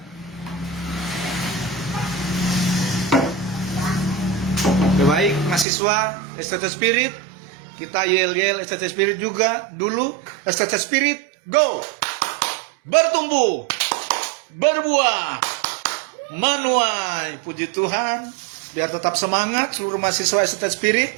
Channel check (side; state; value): left; drops out; at 5.7 s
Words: Baik, mahasiswa STT Spirit, kita yel-yel STT Spirit juga dulu. STT Spirit, go! Bertumbuh, berbuah, menuai. Puji Tuhan, biar tetap semangat seluruh mahasiswa STT Spirit.